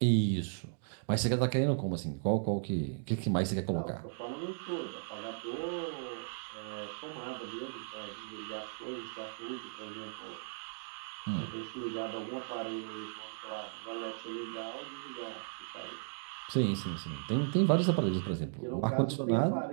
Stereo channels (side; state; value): left; silent; digital silence